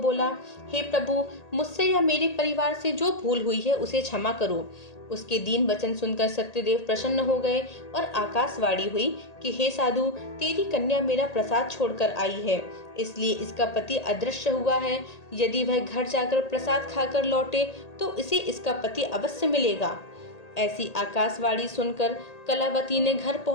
हे प्रभु, मुझसे या मेरे परिवार से जो भूल हुई है उसे क्षमा करो। उसके दीन वचन सुनकर सत्यदेव प्रसन्न हो गए और आकाशवाणी हुई कि हे साधु, तेरी कन्या मेरा प्रसाद छोड़कर आई है, इसलिए इसका पति अदृश्य हुआ है। यदि वह घर जाकर प्रसाद खाकर लौटे तो इसे इसका पति अवश्य मिलेगा। ऐसी आकाशवाणी सुनकर कलावती ने घर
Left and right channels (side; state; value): right; late; 1.8 ms